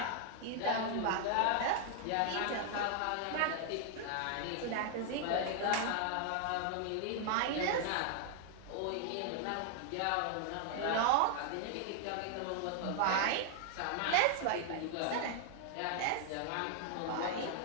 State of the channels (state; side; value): different; both; correlation 0.00